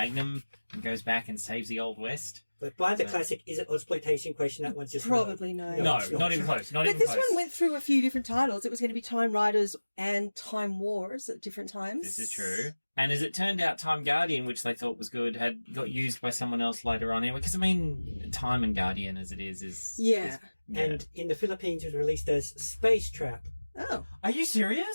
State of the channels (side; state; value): both; inverted; correlation -1.00